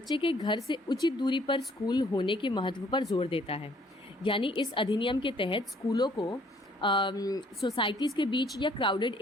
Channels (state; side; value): normal; both; correlation 0.62